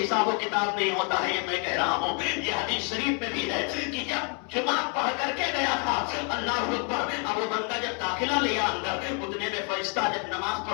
حساب و کتاب نہیں ہوتا ہے۔ یہ میں کہہ رہا ہوں، یہ حدیث شریف میں بھی ہے کہ جب جمعہ پڑھ کر کے گیا تھا، اللہ اکبر، اب وہ بندہ جب داخلہ لیا اندر، اتنے میں فرشتہ جب نماز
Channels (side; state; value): right; quieter; 36.1 dB